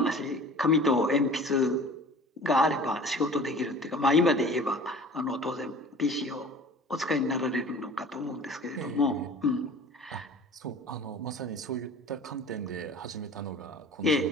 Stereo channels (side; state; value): both; normal; correlation 0.44